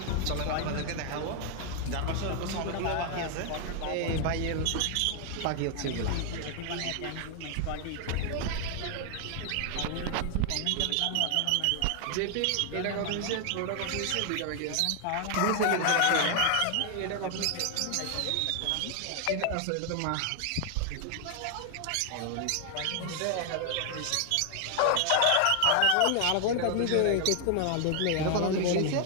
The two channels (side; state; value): both; different; correlation 0.00